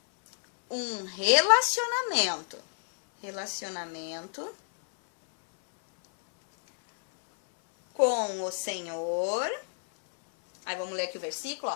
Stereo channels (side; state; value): right; silent; 59 dB below the other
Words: um relacionamento com o Senhor, aí vamos ler aqui o versículo,